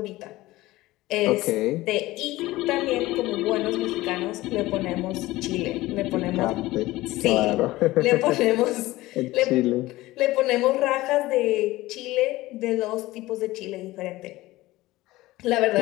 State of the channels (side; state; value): right; quieter; 18.1 dB